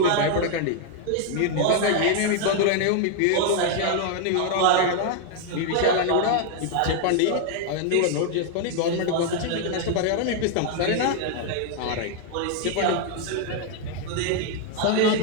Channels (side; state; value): both; different; correlation 0.00